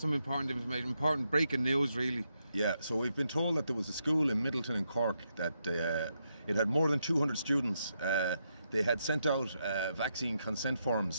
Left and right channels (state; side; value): inverted; both; correlation -0.82